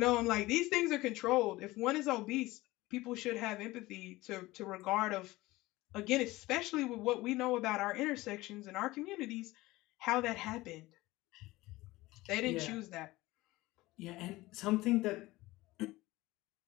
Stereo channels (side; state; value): right; quieter; 19.3 dB